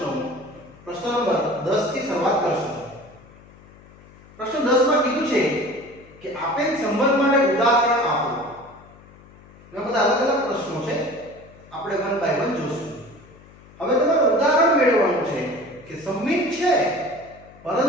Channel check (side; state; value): left; noise; hum, 23 dB below the sound